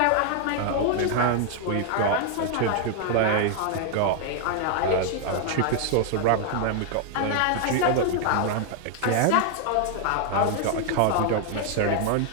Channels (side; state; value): both; different; correlation 0.00